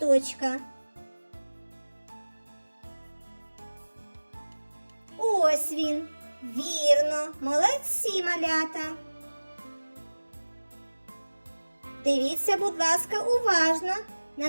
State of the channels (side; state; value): both; inverted; correlation -1.00